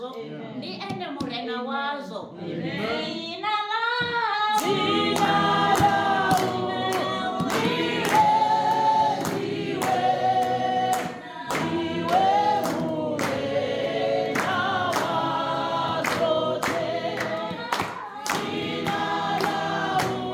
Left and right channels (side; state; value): both; identical; correlation 1.00